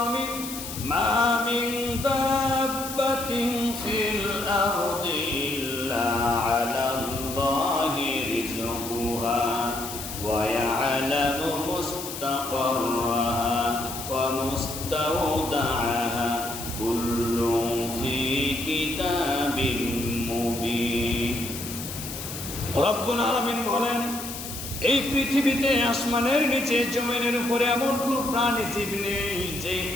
আমি। মা মিন দাব্বাতিন ফিল আরদি ইল্লা আলাল্লাহি রিজকুহা ওয়া ইয়ালামু মুস্তাকাররাহা ওয়া মুস্তাওদাআহা কুল্লুন ফি কিতাবিন মুবিন। রব্বুল আলামিন বলেন, এই পৃথিবীতে আসমানের নিচে জমিনের উপরে এমন কোনো প্রাণী জীব নেই যেই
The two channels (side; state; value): left; noise; hiss, 9 dB below the sound